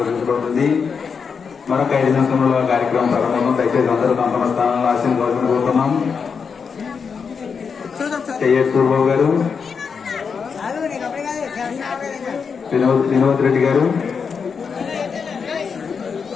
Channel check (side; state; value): right; quieter; 5.9 dB